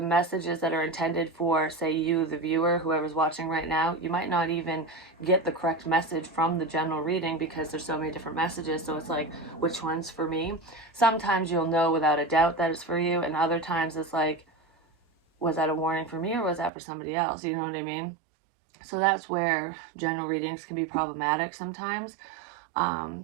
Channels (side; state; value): left; drops out; at 16.7 s